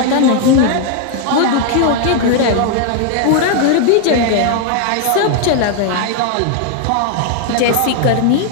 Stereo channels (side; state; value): both; different; correlation 0.00